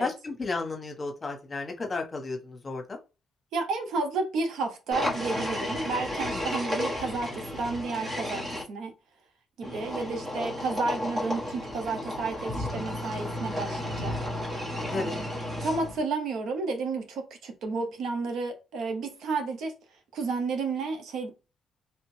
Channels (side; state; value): both; normal; correlation 0.74